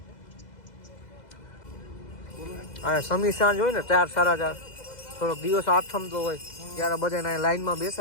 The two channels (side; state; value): right; late; 2.0 ms